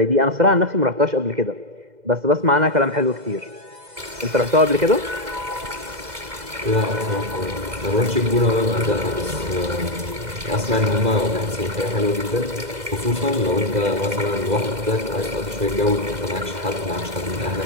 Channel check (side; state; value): left; late; 2.0 ms